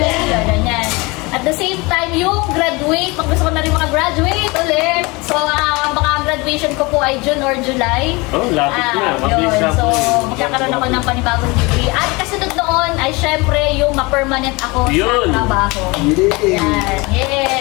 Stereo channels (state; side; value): quieter; right; 25.3 dB